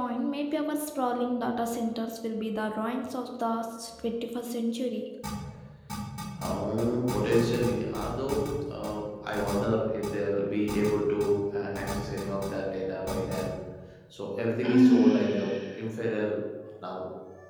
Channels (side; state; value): both; identical; correlation 1.00